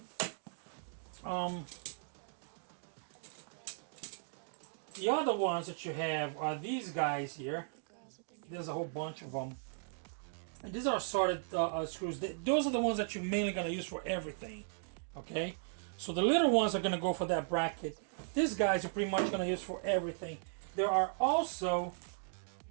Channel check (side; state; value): left; silent; digital silence